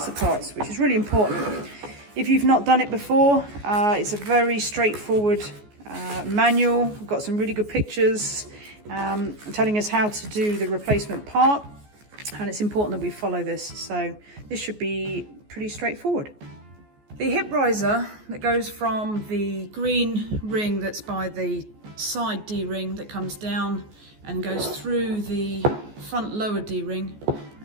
the parts, which is really important. If you've not done it before, it's a very straightforward manual. We've got some really good pictures telling us how to do the replacement part, and it's important that we follow this, so this should be pretty straightforward. The hip riser that goes from the green ring that's by the side D-ring that comes down and goes through the front lower D-ring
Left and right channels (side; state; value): left; late; 14 ms